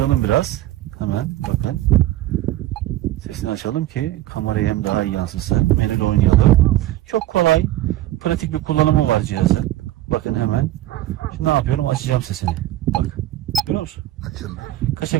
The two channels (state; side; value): quieter; left; 14.9 dB